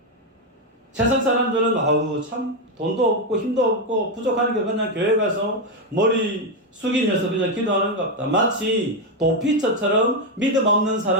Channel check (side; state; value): both; normal; correlation 0.06